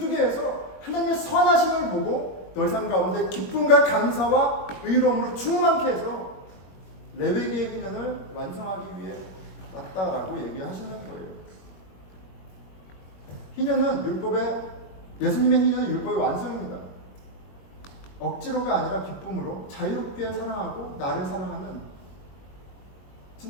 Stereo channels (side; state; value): right; late; 21 ms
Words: 해서 하나님의 선하심을 보고 너희 삶 가운데 기쁨과 감사와 의로움으로 충만케 해서 레위기의 희년을 완성하기 위해 왔다라고 얘기하시는 거예요. 예수님의 희년은 율법의 완성입니다. 억지로가 아니라 기쁨으로 자유롭게 사랑하고 나를 사랑하는